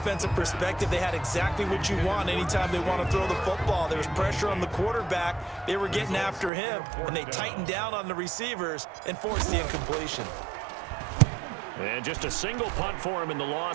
perspective, they had exactly what you want anytime they want to throw the football. There was pressure on the quarterback. They were getting after him, and they tightened down on the receivers and forced the incompletion. And just a single punt for him in the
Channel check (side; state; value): left; drops out; at 6.5 s